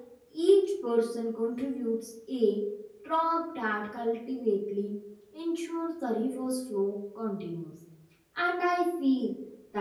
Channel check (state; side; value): identical; both; correlation 1.00